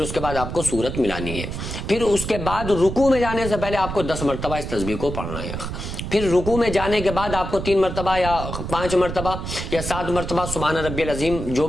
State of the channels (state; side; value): noise; right; rumble, 6 dB below the sound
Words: اس کے بعد آپ کو سورت ملانی ہے، پھر اس کے بعد رکوع میں جانے سے پہلے آپ کو 10 مرتبہ اس تسبیح کو پڑھنا ہے، پھر رکوع میں جانے کے بعد آپ کو 3 مرتبہ یا 5 مرتبہ یا 7 مرتبہ سبحان ربی العظیم، جو